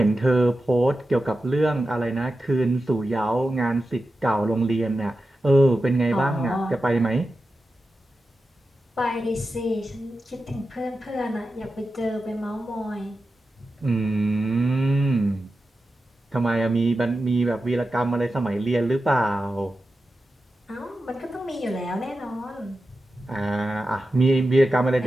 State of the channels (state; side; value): normal; both; correlation 0.92